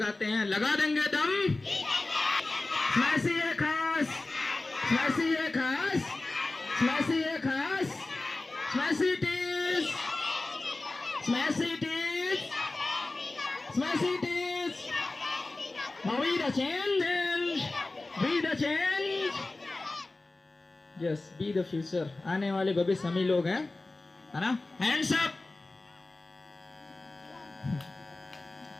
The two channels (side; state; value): right; quieter; 3.1 dB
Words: हैं, लगा देंगे दम। स्मैशी है खास, स्मैशी है खास, स्मैशी है खास, स्मैशी टीज, स्मैशी टीज, स्मैशी टीज। Be the change, be the change. Yes, be the future. आने वाले भविष्य हम ही लोग हैं, है ना। Hands up.